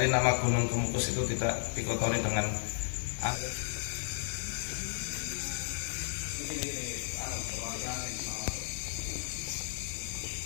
nama Gunung Kemukus itu tidak dikotori dengan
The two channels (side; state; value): right; silent; digital silence